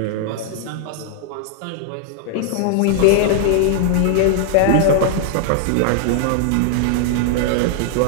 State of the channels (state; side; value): different; both; correlation -0.01